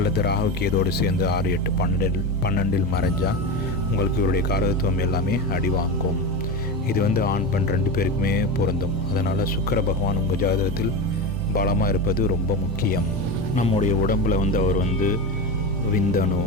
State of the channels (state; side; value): normal; both; correlation 0.21